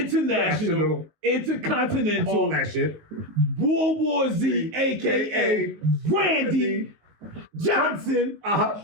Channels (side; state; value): left; late; 19 ms